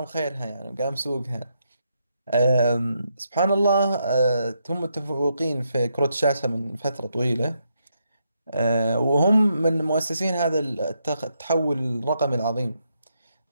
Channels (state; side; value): inverted; both; correlation -0.80